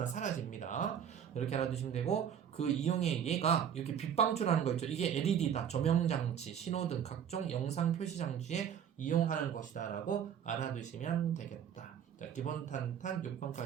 사라집니다. 이렇게 알아두시면 되고 그 이용의 얘가 이렇게 빛 방출하는 거 있죠. 이게 LED다. 조명장치, 신호등, 각종 영상 표시 장치에 이용하는 것이다 라고 알아두시면 되겠다. 자, 기본 탄탄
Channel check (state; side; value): quieter; left; 8.6 dB